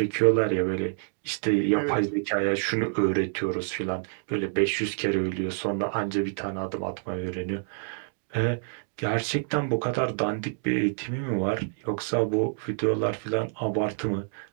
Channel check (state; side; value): silent; left; 60 dB below the other